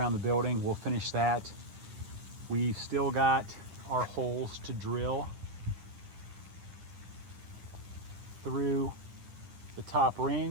the building. We'll finish that. We've still got our holes to drill through the top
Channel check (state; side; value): late; left; 10 ms